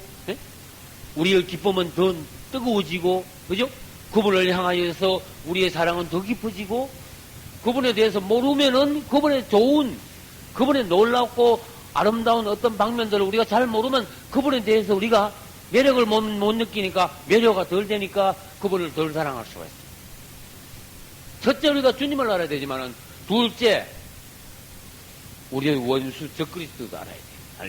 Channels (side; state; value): both; identical; correlation 1.00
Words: 예? 우리의 기쁨은 더 뜨거워지고, 그죠? 그분을 향하여서 우리의 사랑은 더 깊어지고, 그분에 대해서 모르면은 그분의 좋은, 그분의 놀랍고 아름다운 어떤 방면들을 우리가 잘 모르면 그분에 대해서 우리가 매력을 못 느끼니까 매력가 덜 되니까 그분을 덜 사랑할 수가 있어요. 첫째, 우리가 주님을 알아야 되지만은, 둘째, 우리의 원수 적그리스도도 알아야 돼요.